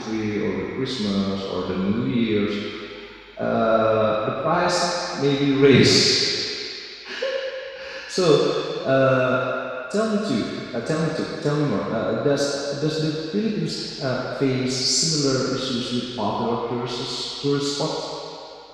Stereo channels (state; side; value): identical; both; correlation 1.00